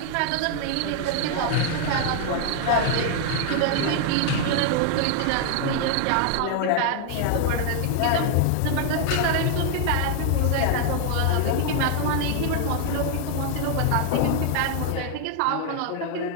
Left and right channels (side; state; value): both; different; correlation 0.00